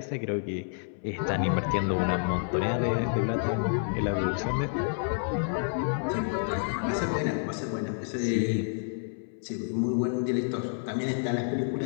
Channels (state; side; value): silent; right; 58 dB below the other